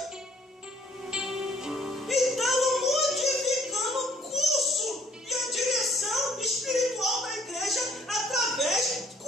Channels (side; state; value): both; normal; correlation 0.62